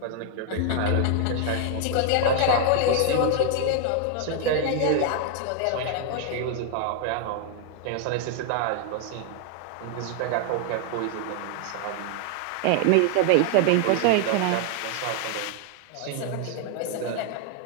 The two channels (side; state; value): both; different; correlation 0.00